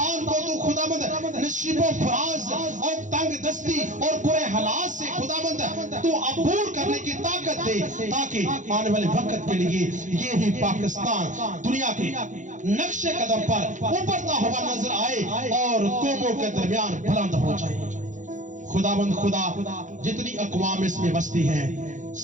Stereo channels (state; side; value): late; left; 0.36 ms